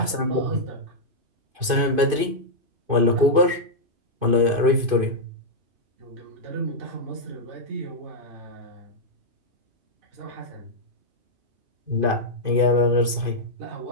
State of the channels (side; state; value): left; late; 2.5 ms